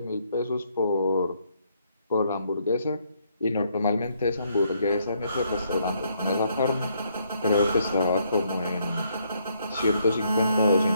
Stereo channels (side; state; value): both; inverted; correlation -0.72